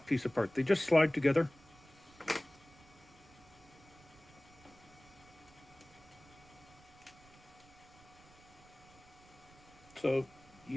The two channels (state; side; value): noise; right; rumble, 24 dB below the sound